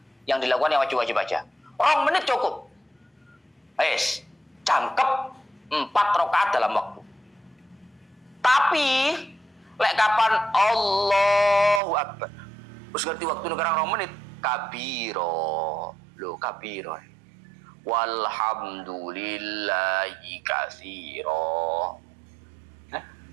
Yang dilakukan yang wajib-wajib aja. 2 menit cukup. Jangkep 4 rakaat dalam waktu. Tapi lek kapan Allahu Akbar, terus ngerti waktu negarang 2 menit, kabiro. Loh, kabiro. Walhamdulillahi katsira.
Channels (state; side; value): drops out; left; at 11.8 s